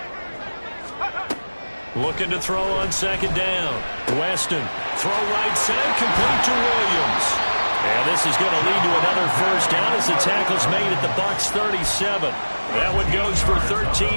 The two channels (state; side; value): inverted; both; correlation -1.00